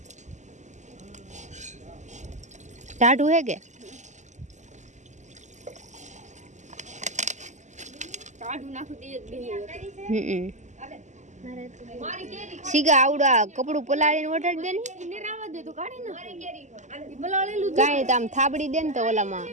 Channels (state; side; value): late; left; 0.34 ms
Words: ટાઢું હે કે સીગા આવડા કપડું પલાળીને વટાડી દે ને કાંઈ તો આમ થાબડી દે ને તો ઓલામાં